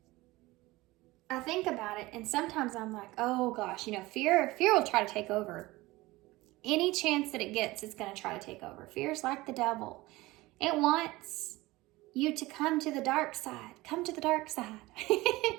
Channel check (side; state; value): left; quieter; 20.0 dB